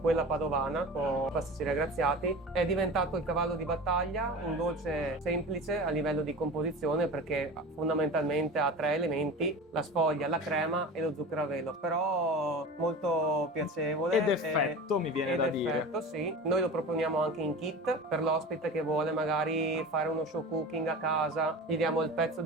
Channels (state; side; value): normal; both; correlation 0.33